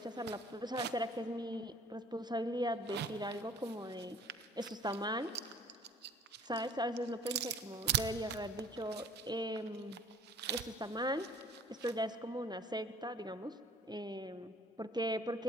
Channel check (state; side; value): normal; both; correlation 0.54